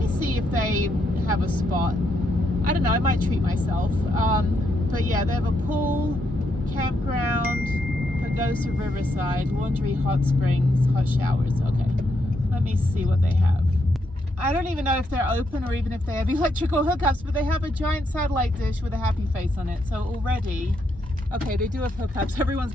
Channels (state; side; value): normal; both; correlation 0.78